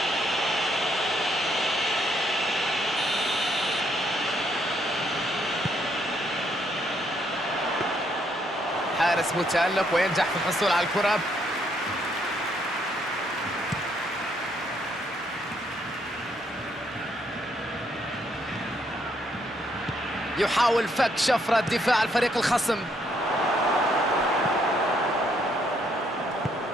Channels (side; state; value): both; normal; correlation 0.72